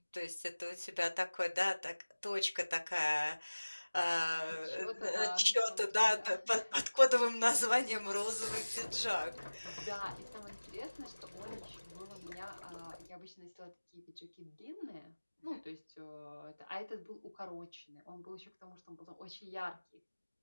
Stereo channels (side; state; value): both; inverted; correlation -1.00